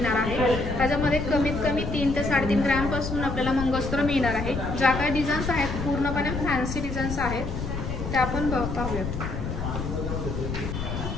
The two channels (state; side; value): noise; left; rumble, 5 dB below the sound